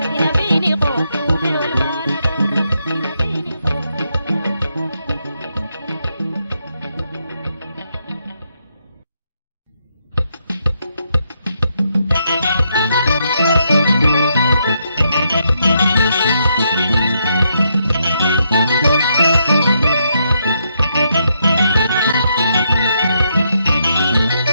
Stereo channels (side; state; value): both; inverted; correlation -0.78